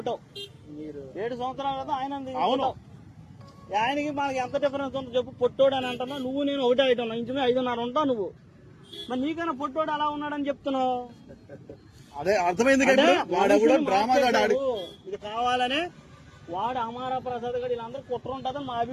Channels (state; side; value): identical; both; correlation 1.00